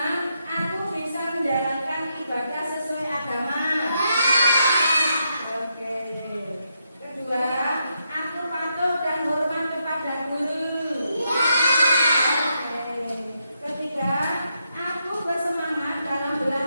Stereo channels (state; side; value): inverted; both; correlation -0.81